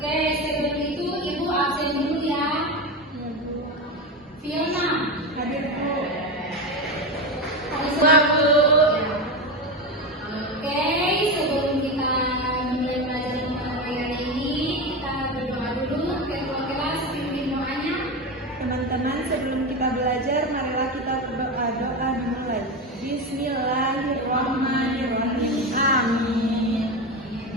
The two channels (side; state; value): both; normal; correlation 0.18